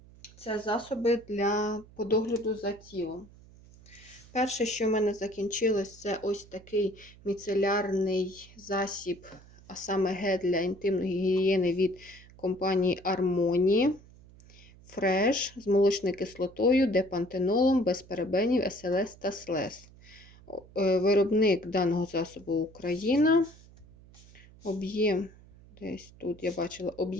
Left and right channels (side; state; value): right; noise; hum, 23 dB below the sound